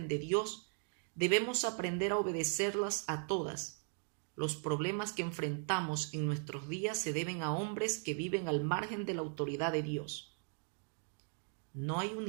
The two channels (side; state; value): left; silent; 52 dB below the other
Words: de Dios, debemos aprender a obedecerlas a todas. Los problemas que enfrentamos en nuestros días se deben a hombres que viven al margen de la autoridad de Dios. No hay